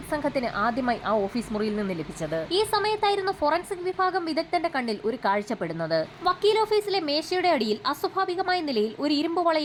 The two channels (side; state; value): both; identical; correlation 1.00